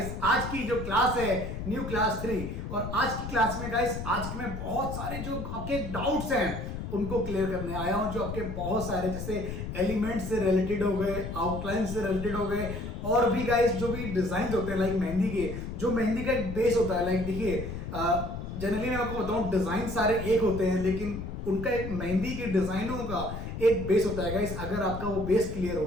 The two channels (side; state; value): left; noise; rumble, 6 dB below the sound